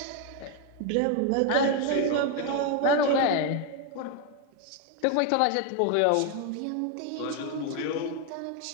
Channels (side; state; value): both; different; correlation 0.01